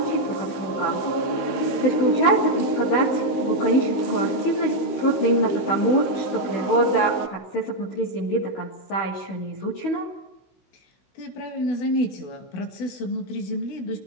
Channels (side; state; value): right; late; 16 ms